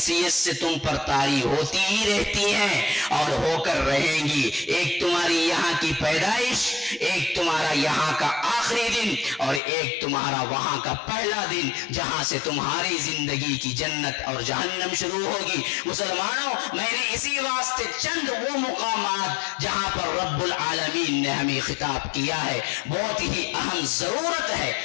سے تم پر طاری ہوتی ہی رہتی ہیں اور ہو کر رہیں گی۔ ایک تمہاری یہاں کی پیدائش، ایک تمہارا یہاں کا آخری دن، اور ایک تمہارا وہاں کا پہلا دن جہاں سے تمہاری زندگی کی جنت اور جہنم شروع ہوگی۔ مسلمانوں، میں نے اسی واسطے چند وہ مقامات جہاں پر رب العالمین نے ہمیں خطاب کیا ہے، بہت ہی اہم ضرورت ہے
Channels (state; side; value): drops out; right; at 9.6 s